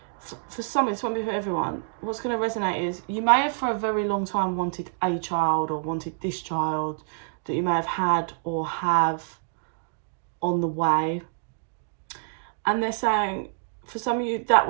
For some, it's won't be for everyone. What's going to resonate is you may have for a very long time wanted a child or wanted this child that you may have had or have on the way. And they're saying, for some of you, that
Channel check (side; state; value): left; silent; digital silence